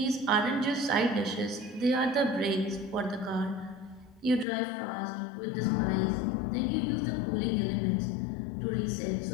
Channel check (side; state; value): right; drops out; at 4.5 s